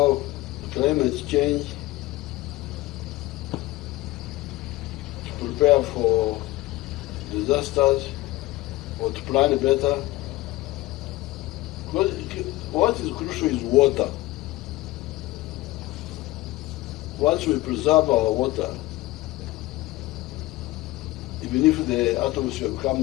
climate change, to prepare for disasters or to plan better. What is crucial is water. Once we preserve our water, even if the atmosphere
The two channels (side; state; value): right; quieter; 18.5 dB